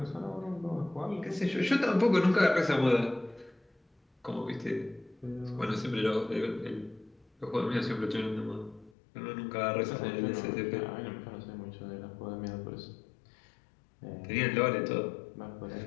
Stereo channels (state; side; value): drops out; right; at 8.9 s